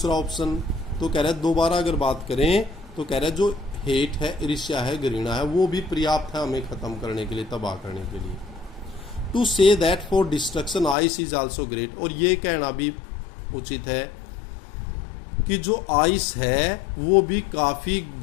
ऑप्शन तो कह रहा है, दोबारा अगर बात करें तो कह रहा है जो हेट है, ईर्ष्या है, घृणा है, वो भी पर्याप्त है हमें खत्म करने के लिए, तबाह करने के लिए। To say that for destruction ice is also great, और ये कहना भी उचित है कि जो आइस है वो भी काफी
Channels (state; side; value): drops out; right; at 11.0 s